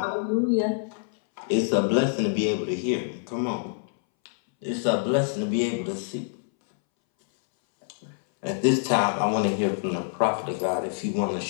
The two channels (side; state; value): right; silent; 61 dB below the other